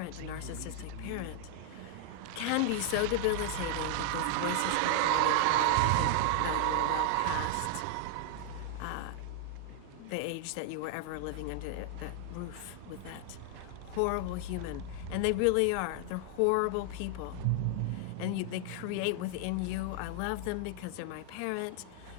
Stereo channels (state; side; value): different; both; correlation 0.00